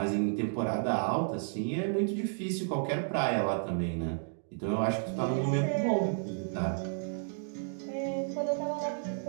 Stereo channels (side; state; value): left; silent; digital silence